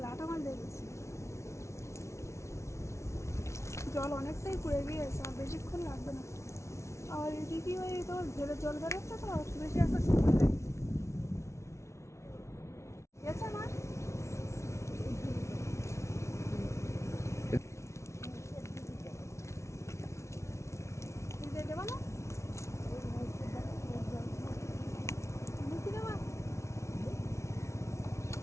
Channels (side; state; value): right; late; 0.13 ms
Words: লাঠা মাছ দেখেছি, জল অনেকটাই পড়ে গিয়েছে, আর বেশিক্ষণ লাগবে না। আর এদিকে ওই তোমার ঘেরে জল বেরোচ্ছে তো বেশি একটা সময় লাগে। গেছে মাছ দিয়ে দেবা না, মুখি দেবা।